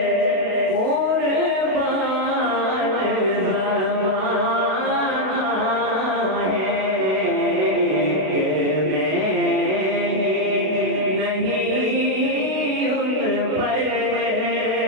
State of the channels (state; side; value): late; left; 32 ms